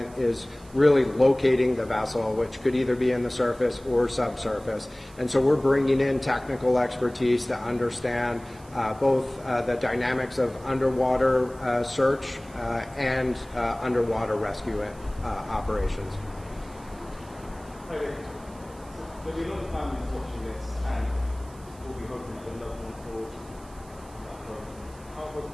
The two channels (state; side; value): noise; right; hiss, 24 dB below the sound